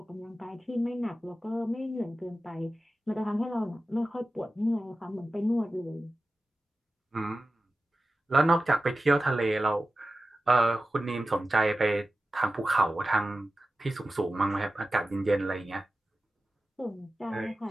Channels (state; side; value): normal; both; correlation 0.94